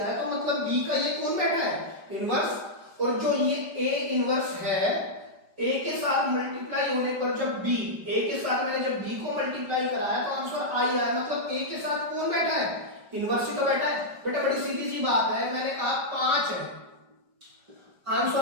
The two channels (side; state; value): left; late; 5.0 ms